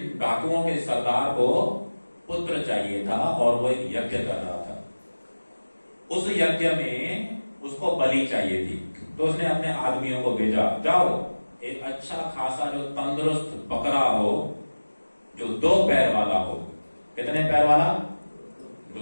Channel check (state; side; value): inverted; both; correlation -1.00